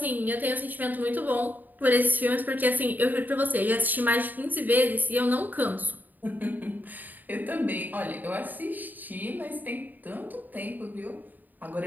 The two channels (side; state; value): left; late; 0.086 ms